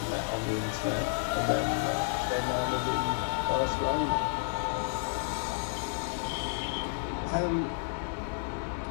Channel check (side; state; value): right; silent; 57 dB below the other